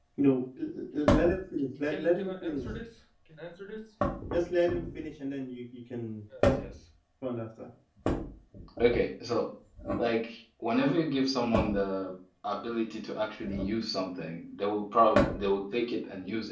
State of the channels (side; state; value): both; identical; correlation 1.00